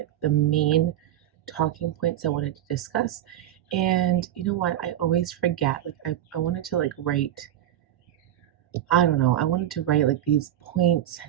the main talking points I wanted to discuss. And you know what? I always forget. Like I wanted to like write, I don't know, I wanted to write like these points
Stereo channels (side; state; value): left; quieter; 12.2 dB